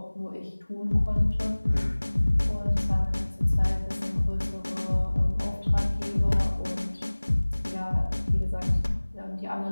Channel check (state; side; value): inverted; both; correlation -1.00